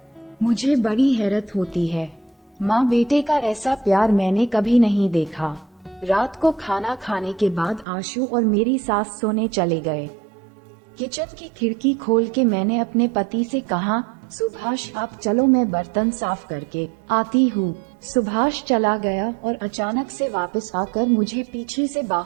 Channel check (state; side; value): drops out; left; at 7.9 s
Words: मुझे बड़ी हैरत होती है। माँ बेटे का ऐसा प्यार मैंने कभी नहीं देखा। रात को खाना खाने के बाद आशु और मेरी सास सोने चले गए। किचन की खिड़की खोल के मैंने अपने पति से कहा, सुभाष आप चलो, मैं बर्तन साफ करके आती हूँ। सुभाष चला गया और अचानक से वापस आकर मुझे पीछे से